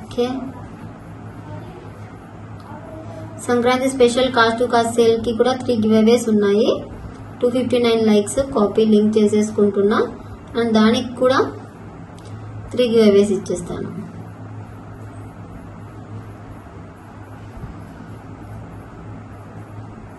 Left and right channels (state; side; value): identical; both; correlation 1.00